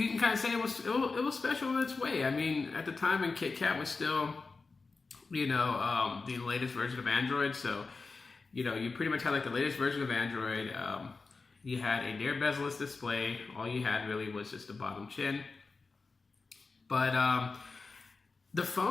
can kind of say it was special in its way. I mean, at the time when KitKat was still, the latest version of Android. So, you pretty much had like the latest version of Android. You had a near bezel-less display. All you had really was just the bottom chin. But the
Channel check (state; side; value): quieter; right; 4.1 dB